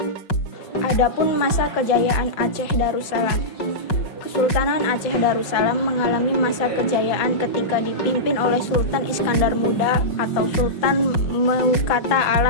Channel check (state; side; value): late; right; 5.4 ms